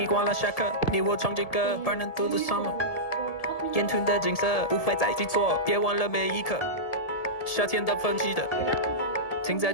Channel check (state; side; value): late; right; 1.7 ms